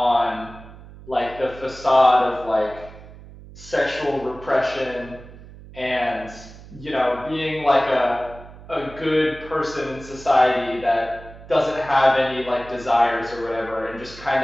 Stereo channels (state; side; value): noise; right; hum, 18 dB below the sound